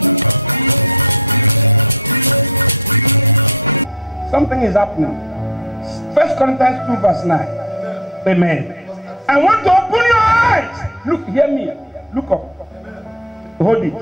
Something is happening. 1 Corinthians 2 verse 9. Amen. I want to open your eyes. Look, hear me. Look up. Hold it.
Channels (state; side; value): normal; both; correlation 0.23